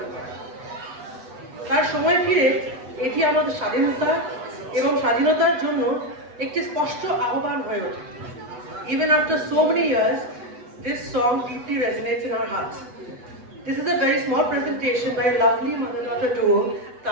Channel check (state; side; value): late; left; 8.1 ms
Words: করে। তার সময় ফিরে এটি আমাদের স্বাধীনতা এবং স্বাধীনতার জন্য একটি স্পষ্ট আহ্বান হয়ে ওঠে। Even after so many years, this song deeply resonates in our hearts. This is a very small presentation by a lovely mother-daughter duo,